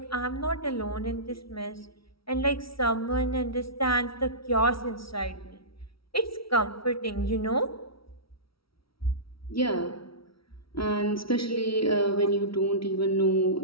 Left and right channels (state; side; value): late; right; 0.75 ms